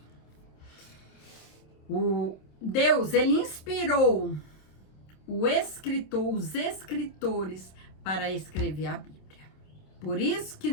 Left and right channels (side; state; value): right; late; 27 ms